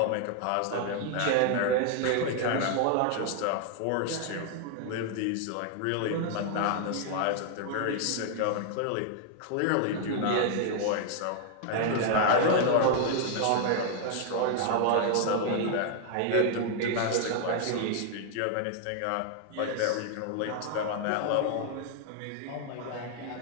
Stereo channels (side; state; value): both; different; correlation 0.00